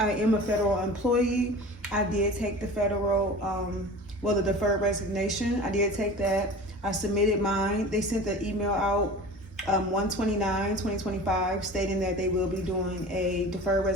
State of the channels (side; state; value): both; normal; correlation 0.37